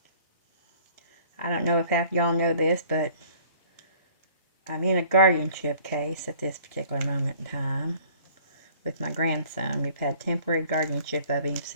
I don't know if half y'all know this, but I'm in a guardianship case at this particular moment in time with my grandson. We've had temporary guardianship of him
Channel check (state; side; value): inverted; both; correlation -0.53